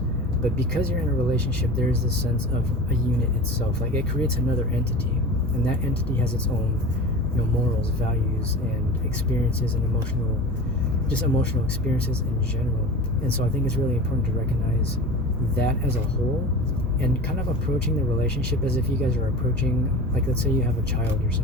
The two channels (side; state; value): both; normal; correlation 0.34